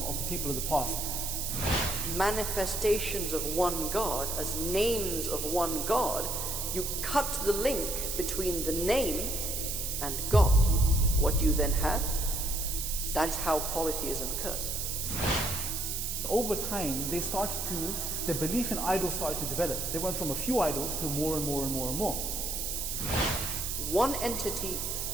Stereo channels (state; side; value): noise; right; hiss, 2 dB below the sound